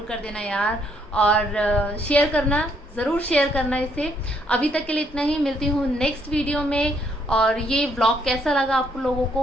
कर देना यार, और शेयर करना, ज़रूर शेयर करना इसे। अभी तक के लिए इतना ही, मिलती हूँ नेक्स्ट वीडियो में। और ये व्लॉग कैसा लगा आप लोगों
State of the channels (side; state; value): both; normal; correlation 0.70